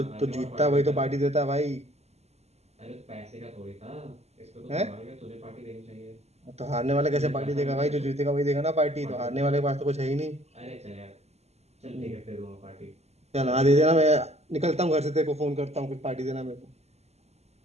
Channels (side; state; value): left; late; 0.31 ms